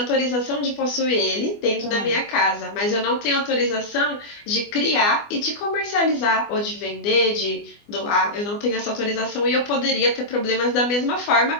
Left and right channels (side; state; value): right; late; 24 ms